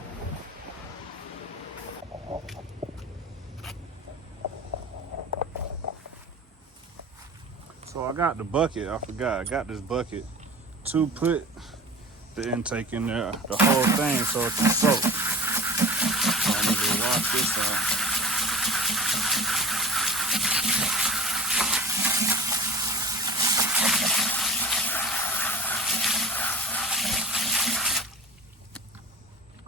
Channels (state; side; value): normal; both; correlation 0.38